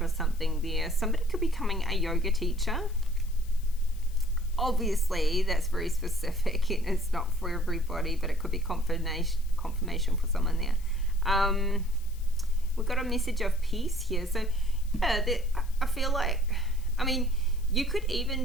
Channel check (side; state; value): left; noise; hiss, 23 dB below the sound